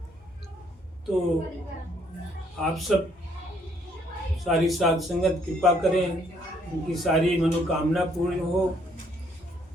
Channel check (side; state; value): both; normal; correlation 0.67